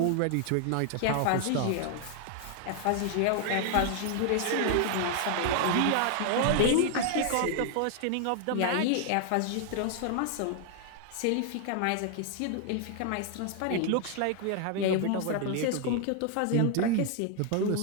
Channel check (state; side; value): different; both; correlation 0.00